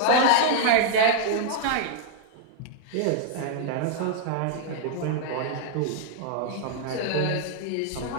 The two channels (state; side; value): different; both; correlation -0.01